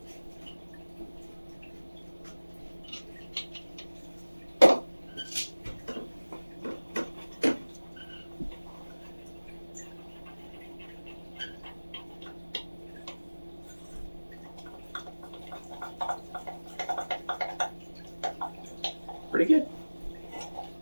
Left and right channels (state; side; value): inverted; both; correlation -1.00